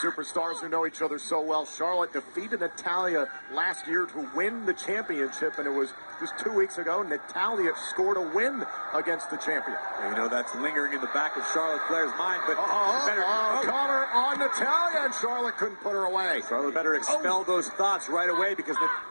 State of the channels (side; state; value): both; inverted; correlation -1.00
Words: who know each other so well. Charlotte defeated Natalya last year to win the championship, and it was just 2 weeks ago. Natalya scored a win against the champion. Well, you know, that's lingering in the back of Charlotte Flair's mind, but Connor on Natalya, and Charlotte couldn't put her away. Charlotte better expel those thoughts right away because